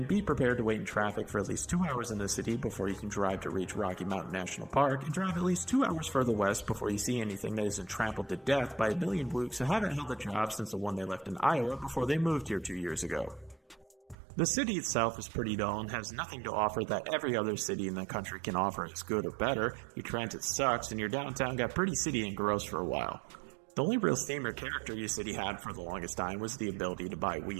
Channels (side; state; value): left; drops out; at 14.2 s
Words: be prepared to wait in traffic for at least 2 hours in the city before you can drive to reach Rocky Mountain National Park, and drive at least 2 hours further west before you see anything that isn't trampled to death by a million blokes who haven't held a job since the one they left in Iowa before they moved here 2 years ago. The city itself is pretty dull and has nothing to offer that every other city in the country can offer as good or better. Your transit sucks, and your downtown got pretty city and gross for a while. The only real theme or character your city had for the longest time was the ability to buy